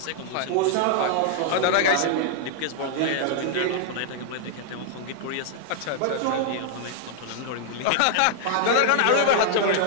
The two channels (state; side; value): different; both; correlation -0.01